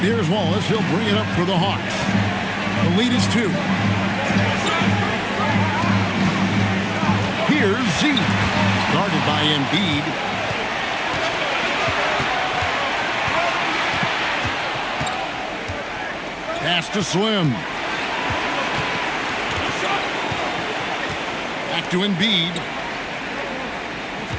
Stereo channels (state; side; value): identical; both; correlation 1.00